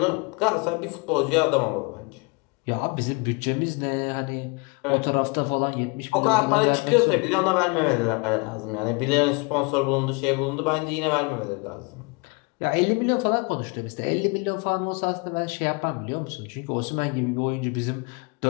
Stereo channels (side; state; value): right; quieter; 30.6 dB